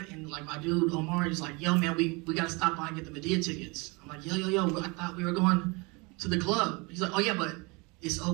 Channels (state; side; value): quieter; left; 27.8 dB